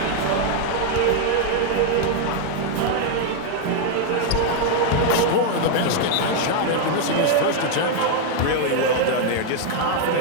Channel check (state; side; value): different; both; correlation 0.00